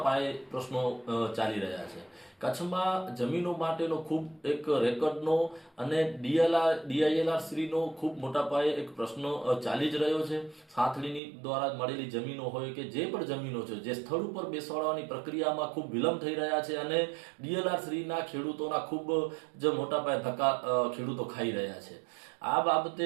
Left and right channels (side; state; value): left; drops out; at 11.2 s